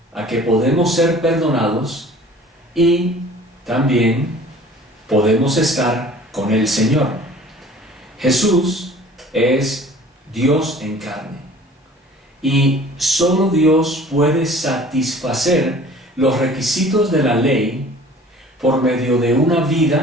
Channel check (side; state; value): both; normal; correlation 0.48